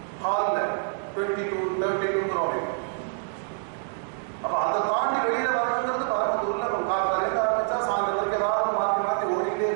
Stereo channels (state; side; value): silent; left; digital silence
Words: ஹால்ல 22-32 அப்ப அதை தாண்டி வெளியில வரணுங்கிறது பரமத்தூர்ல காலையில ஆரம்பிச்சா சாயந்தரம் வரைக்கும் ஏதாவது மாற்றி மாற்றி ஓடிக்கிட்டே